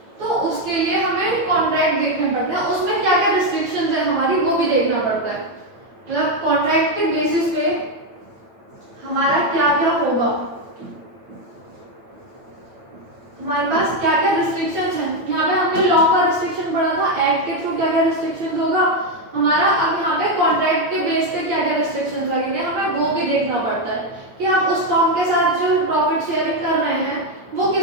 तो उसके लिए हमें कॉन्ट्रैक्ट देखने पड़ते हैं, उसमें क्या क्या रिस्ट्रिक्शंस है हमारी वो भी देखना पड़ता है। मतलब कॉन्ट्रैक्ट के बेसिस पे हमारा क्या क्या होगा, हमारे पास क्या क्या रिस्ट्रिक्शंस हैं। यहाँ पे हमने लॉ का रिस्ट्रिक्शन पढ़ा था, एक्ट के थ्रू क्या क्या रिस्ट्रिक्शंस होगा हमारा। अब यहाँ पे कॉन्ट्रैक्ट के बेस पे क्या क्या रिस्ट्रिक्शंस लगेंगे हमें वो भी देखना पड़ता है कि आप उस फर्म के साथ जो प्रॉफिट शेयरिंग कर रहे हैं वो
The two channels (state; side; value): late; left; 9.0 ms